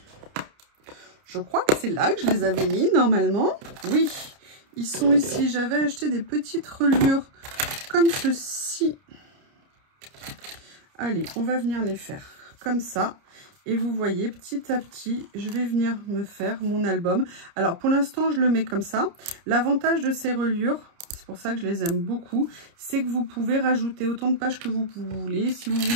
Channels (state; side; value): late; left; 30 ms